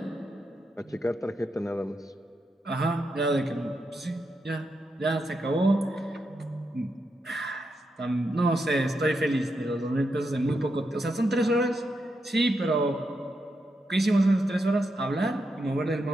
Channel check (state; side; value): normal; both; correlation 0.84